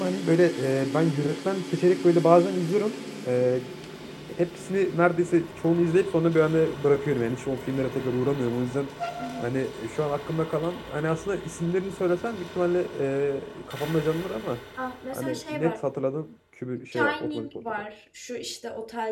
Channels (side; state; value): both; identical; correlation 1.00